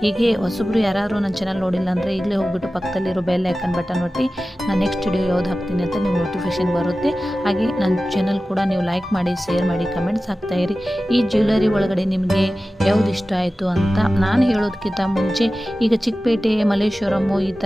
ಹೀಗೆ ಹೊಸಬ್ರು ಯಾರು ನನ್ನ ಚಾನಲ್ ನೋಡಿಲ್ಲ ಅಂದರೆ ಈಗಲೇ ಹೋಗ್ಬಿಟ್ಟು ಪಕ್ಕದಲ್ಲಿರೋ ಬೆಲ್ ಐಕನ್ ಬಟನ್ ಒತ್ತಿ ನಾನು ನೆಕ್ಸ್ಟ್ ವಿಡಿಯೋ ಯಾವ್ದು ಹಾಕ್ತೀನಿ ಅಂತ ನೀವು ನೋಟಿಫಿಕೇಷನ್ ಬರುತ್ತೆ. ಹಾಗೆ ನನ್ನ ಚಾನಲ್ ಕೂಡ ನೀವು ಲೈಕ್ ಮಾಡಿ, ಶೇರ್ ಮಾಡಿ, ಕಮೆಂಟ್ಸ್ ಹಾಕ್ತಾಯಿರಿ. ಈ ಜ್ಯುವೆಲರಿ ಒಳಗಡೆ ನಿಮಗೆ ಯಾವ್ದು ಇಷ್ಟ ಆಯಿತು ಅಂತ ನಾನು ಹೇಳೋದಕ್ಕಿಂತ ಮುಂಚೆ, ಈಗ ಚಿಕ್ಕಪೇಟೆ, ಮಲ್ಲೇಶ್ವರಮು ಈ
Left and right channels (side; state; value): both; normal; correlation 0.95